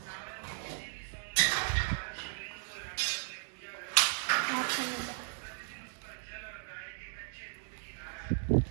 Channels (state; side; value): silent; left; digital silence